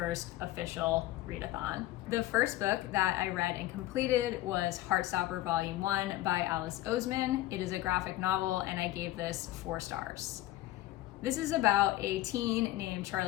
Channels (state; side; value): quieter; right; 15.9 dB